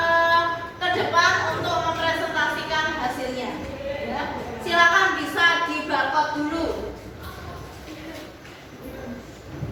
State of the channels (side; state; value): both; identical; correlation 1.00